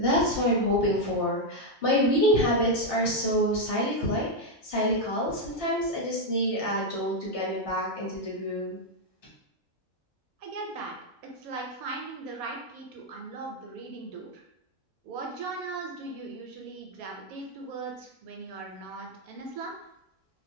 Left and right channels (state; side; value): normal; both; correlation 0.02